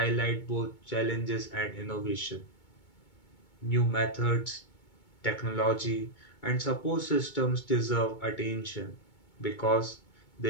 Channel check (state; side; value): late; right; 2.2 ms